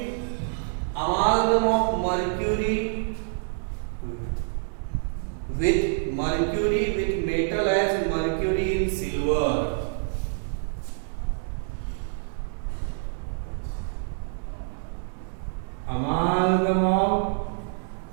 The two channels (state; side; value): silent; left; 60 dB below the other